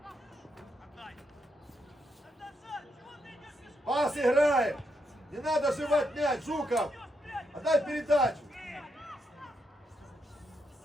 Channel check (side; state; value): both; normal; correlation 0.80